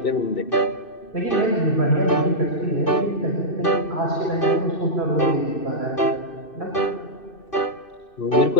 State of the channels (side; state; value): right; late; 2.6 ms